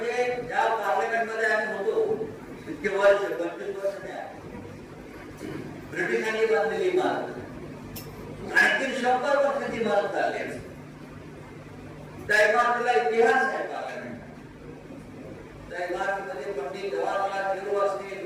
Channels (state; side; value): identical; both; correlation 1.00